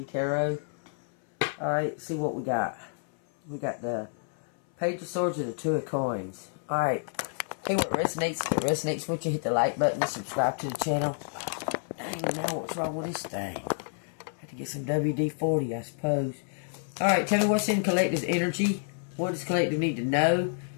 Tarot. Alright, see what we got. We got the Page of Swords and the Two of Coins. Alright, hey, what resonates? If it resonates with you, hit the like button and subscribe to the channel. Dang, now what's wrong with this thing? Have to get some WD-40, I suppose. Alright, tell me what's in Collective's energy. What does Collective need to know?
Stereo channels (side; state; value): right; silent; 58 dB below the other